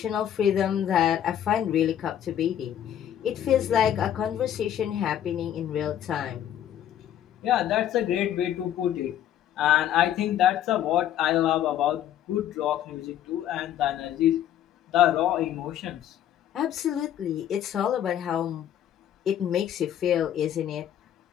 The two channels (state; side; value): quieter; right; 10.7 dB